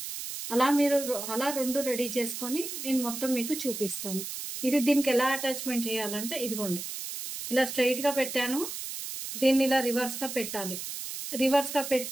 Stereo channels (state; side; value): noise; right; hiss, 7 dB below the sound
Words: అలా మీరు అలా 2 రెడీ చేసుకొని నేను మొత్తం మీకు చూపిస్తాను. ఇది దీనికి ఎలా అటాచ్మెంట్ చేయాలంటే ఇదిగోండి ఇలా స్ట్రైట్ గా పెట్టాను, దీన్ని ఇలా రివర్స్ గా పెట్టాలి. రివర్స్ గా